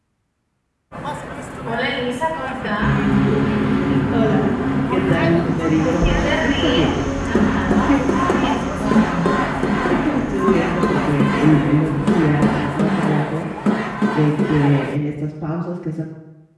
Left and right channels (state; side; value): identical; both; correlation 1.00